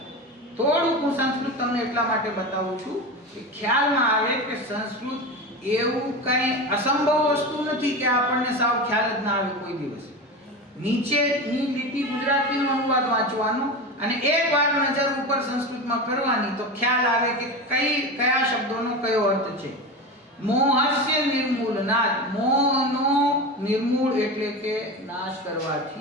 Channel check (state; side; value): normal; both; correlation 0.24